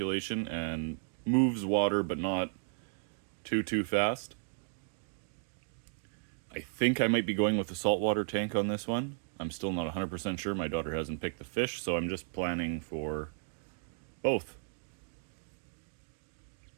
and moves water but not too fast. I think I might be going with the saltwater tank on this one. I'm still not 100% sure. My daughter hasn't picked the fish, so I'm just planning for both.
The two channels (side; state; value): left; silent; digital silence